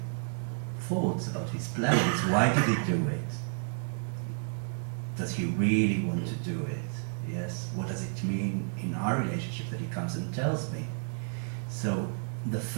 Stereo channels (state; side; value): silent; left; digital silence